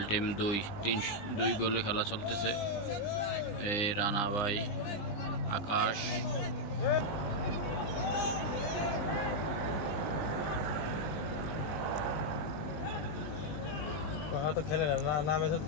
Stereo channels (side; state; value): right; late; 20 ms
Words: team 2 গোলে খেলা চলতেছে। এই রানা ভাই, আকাশ। তো খেলে না নামে তো